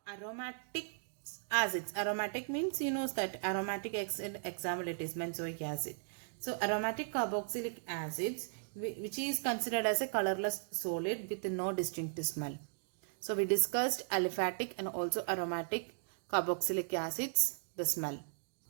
aromatic acids. Aromatic means, you know that aromatic acid, example it is benzoic acid. So aromatic carboxylic acids, which is considered as a colorless solid with no distinct smell. So we discussed aliphatic and also aromatic carboxylic acids, the smell.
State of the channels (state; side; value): silent; left; digital silence